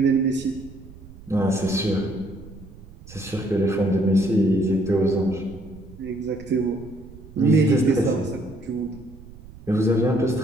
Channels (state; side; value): noise; right; rumble, 19 dB below the sound